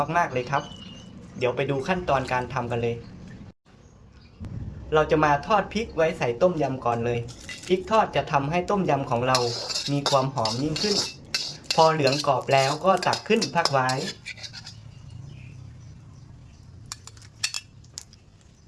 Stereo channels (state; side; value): identical; both; correlation 1.00